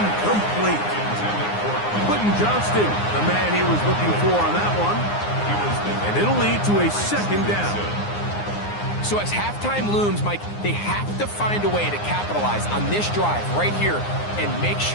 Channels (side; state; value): right; late; 9.7 ms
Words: Quentin Johnston, the man he was looking for on that one. And it'll lead to a second down. So as halftime looms, Mike, they have to find a way to capitalize on this drive right here and make